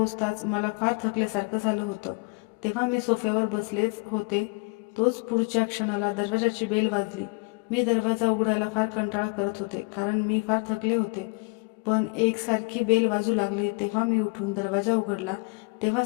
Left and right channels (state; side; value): quieter; right; 31.3 dB